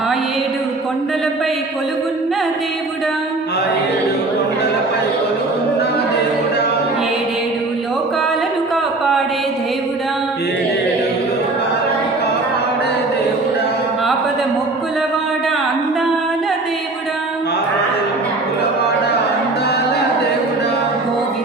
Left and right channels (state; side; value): quieter; left; 3.1 dB